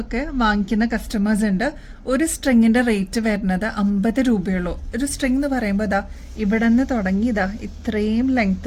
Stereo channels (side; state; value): both; identical; correlation 1.00